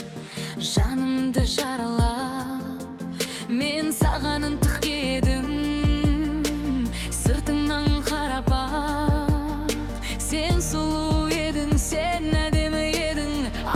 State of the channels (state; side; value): identical; both; correlation 1.00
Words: Жанымды жаралап, мен саған ынтық едім. Сыртыңнан қарап бақ, сен сұлу едің, сен әдемі едің.